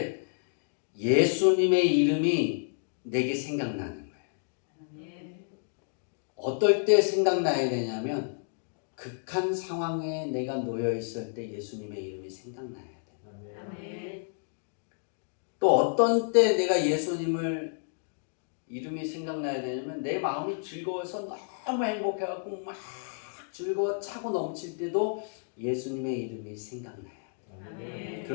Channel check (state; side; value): silent; right; digital silence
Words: 예수님의 이름이 내게 생각나는 거예요. 아멘. 어떨 때 생각나야 되냐면 극한 상황에 내가 놓여 있을 때 예수님의 이름이 생각나야 돼요. 아멘. 또 어떤 때 내가 예수님을 이름이 생각나야 되냐면 내 마음이 즐거워서 너무 행복해갖고 막 즐거워 차고 넘칠 때도 예수님의 이름이 생각나요. 아멘.